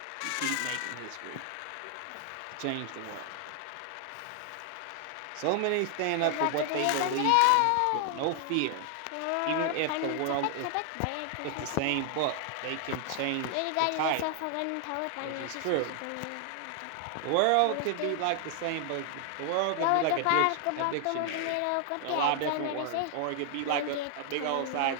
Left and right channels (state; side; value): different; both; correlation 0.00